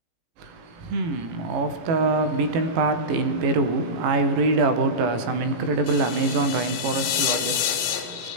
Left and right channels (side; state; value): left; late; 17 ms